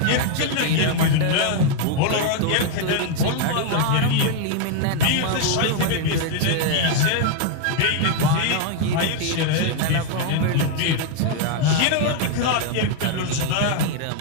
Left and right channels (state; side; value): different; both; correlation 0.00